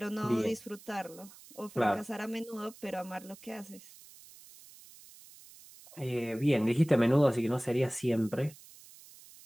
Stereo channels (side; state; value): right; noise; hiss, 21 dB below the sound